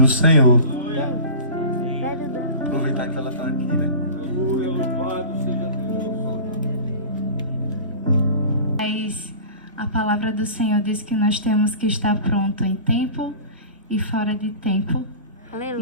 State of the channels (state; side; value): inverted; both; correlation -0.36